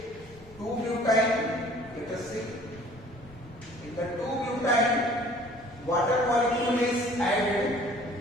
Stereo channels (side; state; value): both; normal; correlation 0.52